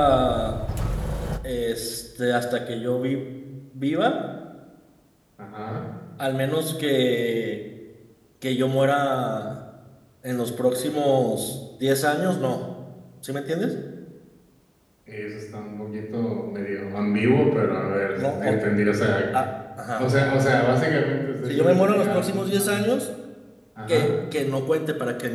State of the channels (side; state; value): both; identical; correlation 1.00